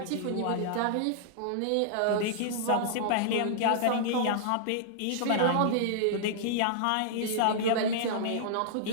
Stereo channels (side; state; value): both; different; correlation -0.01